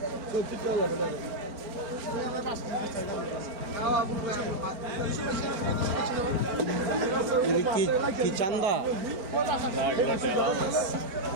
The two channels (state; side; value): late; left; 4.4 ms